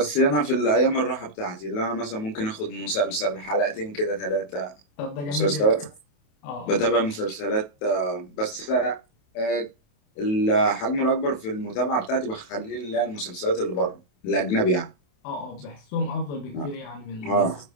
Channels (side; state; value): right; late; 28 ms